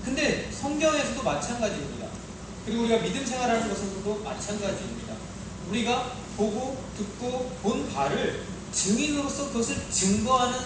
근데 성경에서도 마찬가지입니다. 그리고 우리가 믿음 생활하는 것에서도 마찬가지입니다. 우리가 보고 듣고 본 바를 증인으로서 그것을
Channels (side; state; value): both; identical; correlation 1.00